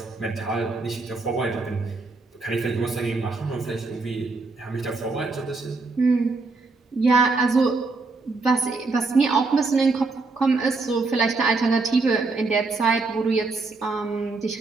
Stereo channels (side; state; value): left; quieter; 3.8 dB